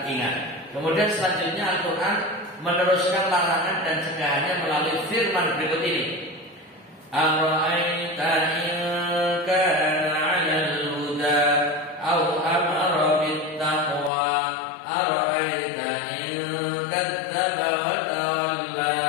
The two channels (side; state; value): right; drops out; at 14.1 s